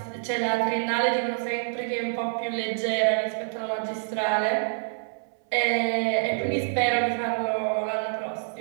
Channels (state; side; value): silent; left; 60 dB below the other